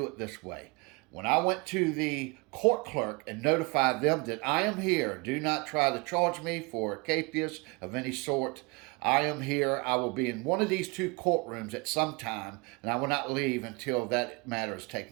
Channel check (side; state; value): left; quieter; 28.2 dB